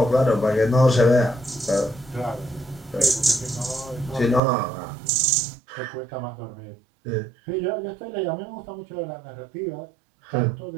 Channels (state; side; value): drops out; left; at 4.4 s